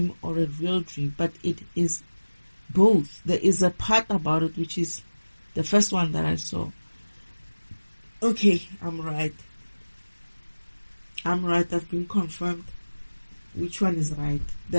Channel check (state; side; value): inverted; both; correlation -1.00